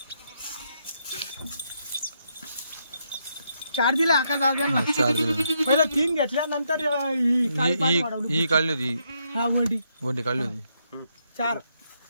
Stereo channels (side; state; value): both; inverted; correlation -0.77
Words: चार दिले आकाश दादा. 4 दिले. पहिला 3 घेतल्या नंतर ही काढली होती. हा वंडी काढली होती. 4